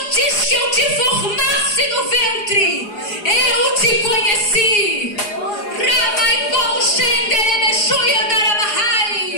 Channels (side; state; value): right; late; 4.8 ms